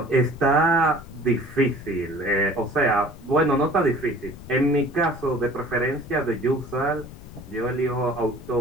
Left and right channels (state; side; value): noise; left; rumble, 16 dB below the sound